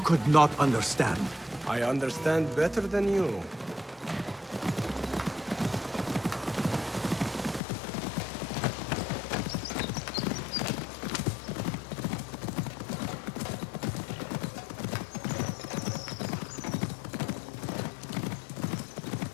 could not understand. I understand better than you.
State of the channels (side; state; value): right; drops out; at 7.6 s